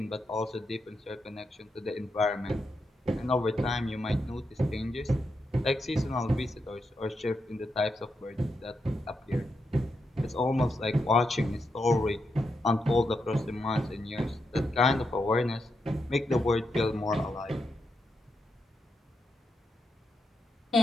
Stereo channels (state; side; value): normal; both; correlation 0.84